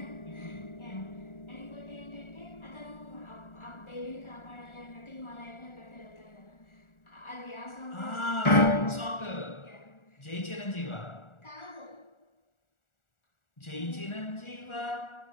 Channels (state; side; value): late; right; 1.4 ms